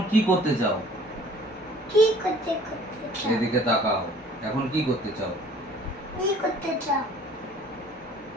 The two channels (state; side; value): normal; both; correlation 0.52